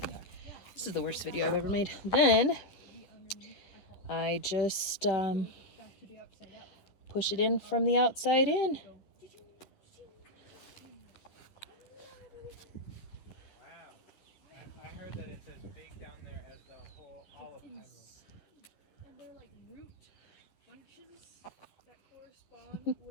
this is the worst video I've ever made. Then I just push it in from the outside in.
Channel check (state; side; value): late; right; 11 ms